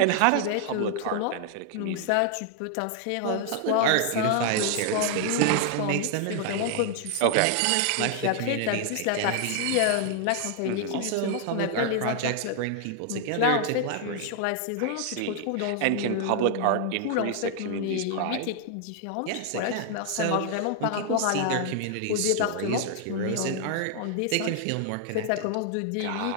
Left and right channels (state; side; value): different; both; correlation 0.00